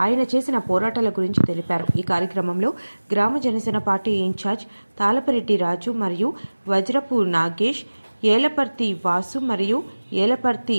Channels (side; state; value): both; inverted; correlation -1.00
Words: ఆయన చేసిన పోరాటాల గురించి తెలిపారు. ఈ కార్యక్రమంలో గ్రామ జనసేన పార్టీ ఇన్ఛార్జ్ తాళపరెడ్డి రాజు మరియు వజ్రపు నాగేష్, ఏలపర్తి వాసు మరియు